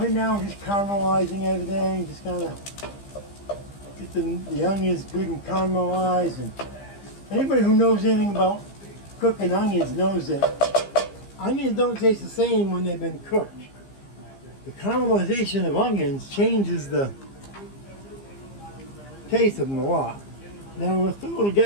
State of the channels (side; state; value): right; late; 15 ms